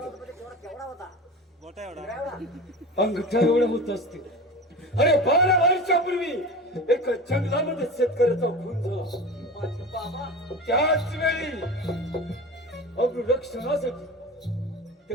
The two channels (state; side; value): normal; both; correlation 0.31